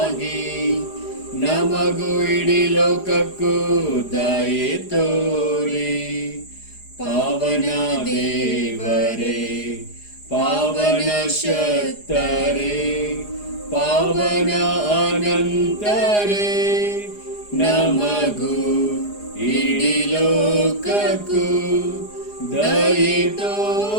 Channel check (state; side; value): late; right; 4.9 ms